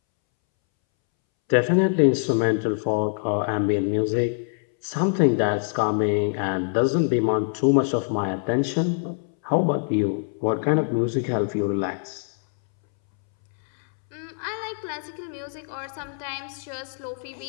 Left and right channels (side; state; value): right; silent; 62 dB below the other